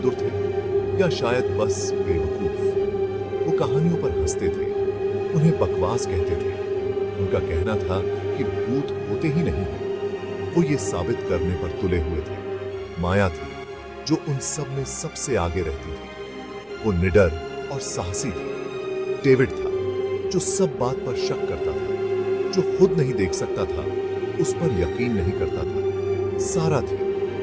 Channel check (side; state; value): both; identical; correlation 1.00